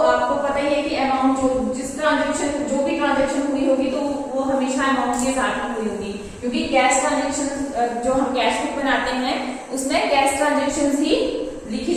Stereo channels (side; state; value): both; identical; correlation 1.00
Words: आपको पता ही है कि अमाउंट जो भी ट्रांजेक्शन हुई होगी तो वो हमेशा अमाउंट के साथ हुई होगी, क्योंकि कैश ट्रांजेक्शन जो हम कैश बुक बनाते हैं उसमें कैश ट्रांजेक्शन ही लिखी